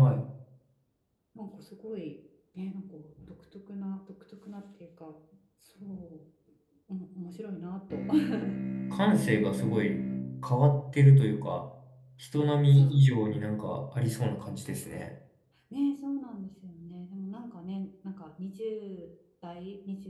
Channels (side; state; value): both; identical; correlation 1.00